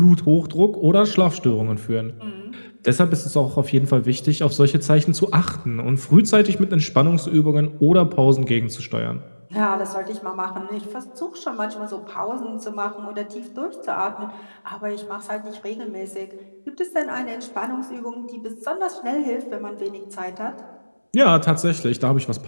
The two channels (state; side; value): inverted; both; correlation -1.00